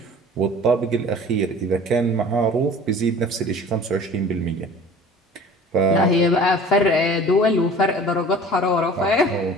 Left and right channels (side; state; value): both; normal; correlation 0.44